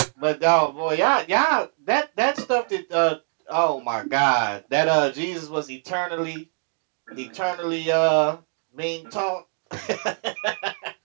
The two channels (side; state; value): left; silent; 63 dB below the other